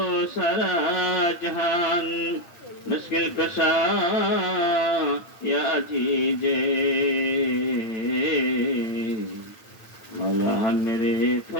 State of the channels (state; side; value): late; right; 8.9 ms